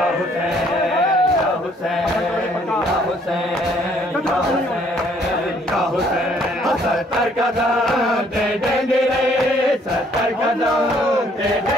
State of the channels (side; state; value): both; normal; correlation 0.63